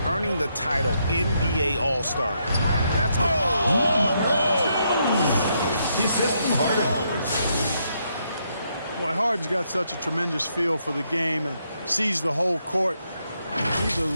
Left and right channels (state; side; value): inverted; both; correlation -0.77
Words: earning the title NBA All-Star, that's Boy, Harden's got such a tremendous feel for the game and sees the whole court. He's a